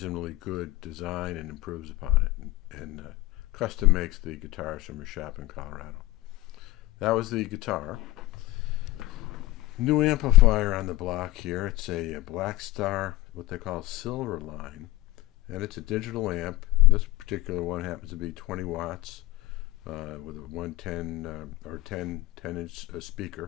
good design and improves upon it, and custom makes the guitars from a shop in Colorado. That was the guitar. New amplifier on the block here. It's a Black Star, what they call Silver Line, and it's a digital amp. This particular one happens to be 20 watts with a 110 or 10-inch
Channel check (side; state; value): right; quieter; 18.4 dB